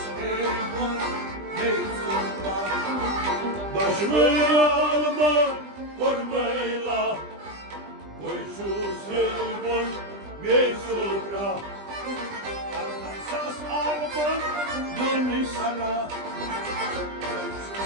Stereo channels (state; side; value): late; left; 20 ms